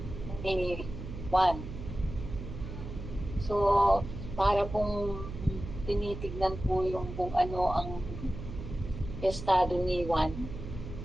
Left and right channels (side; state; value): right; noise; hum, 9 dB below the sound